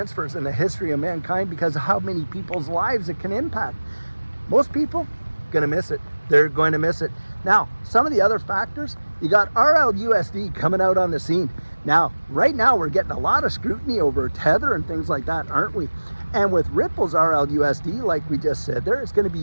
in the history of mankind, because of how many people's lives it can impact. Most people gonna miss it. They're going to miss it. Now, some of the other factors, you got RLUSD coming out on the scene. Now, right now, we're getting a lot of scrutiny over Tether and things like that, aren't we? And with Ripple's RLUSD, like we just said there, it's going to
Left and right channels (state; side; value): inverted; both; correlation -1.00